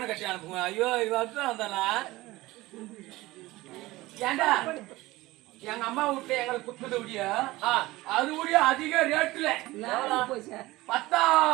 கட்டி அனுப்புங்க ஐயோ இவன் வந்தானா ஏண்டா எங்க அம்மா விட்டு எங்களுக்கு குத்துது முடியா அது முடிய அதிக ரேட்டுல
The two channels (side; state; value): left; quieter; 19.2 dB